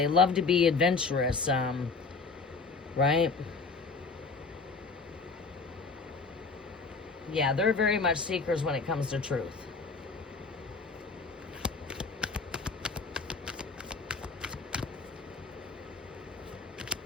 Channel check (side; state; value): right; quieter; 4.4 dB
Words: love to be adventurous. Right? Yeah, they're very much seekers when it comes to truth.